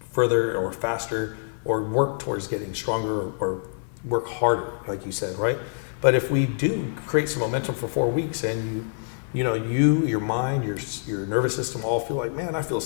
or faster, or work towards getting stronger, or work harder, like you said, right? But if we do create some momentum for 4 weeks, and your mind, your nervous system all feel like, man, I feel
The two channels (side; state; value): right; silent; digital silence